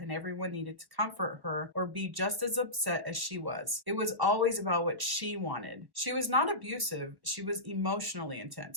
everyone needed to comfort her or be just as upset as she was. It was always about what she wanted. She was not abusive. She was emotionally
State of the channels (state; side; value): late; left; 1.0 ms